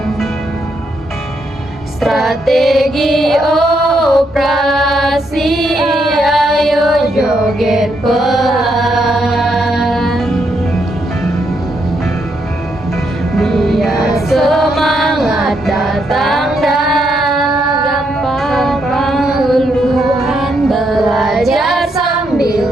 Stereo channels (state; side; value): normal; both; correlation 0.77